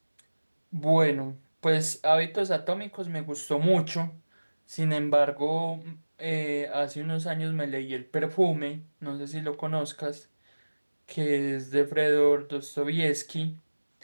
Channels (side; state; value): both; inverted; correlation -1.00